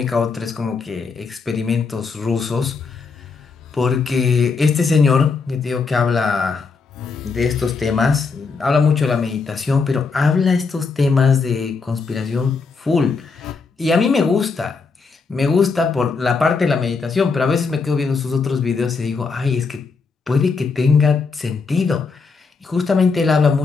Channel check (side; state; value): right; quieter; 4.7 dB